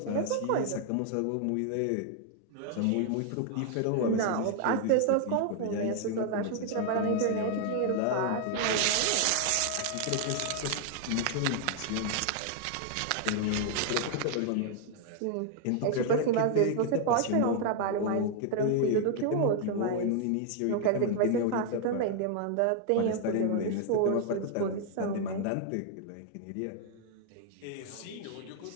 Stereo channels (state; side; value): different; both; correlation 0.00